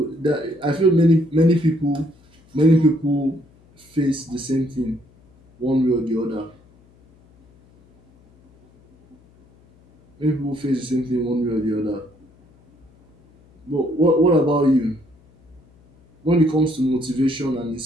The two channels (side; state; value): left; noise; hum, 30 dB below the sound